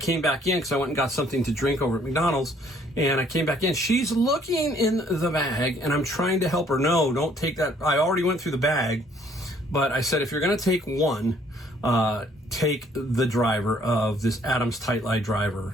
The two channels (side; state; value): both; normal; correlation 0.62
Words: back in because I went and got something to drink over at McDonald's, and I came back in. She's looking in the bag, and I'm trying to help her. No, don't take that. I already went through the bag, but I said, if you're going to take one, take the driver of this Adams Tight Light driver.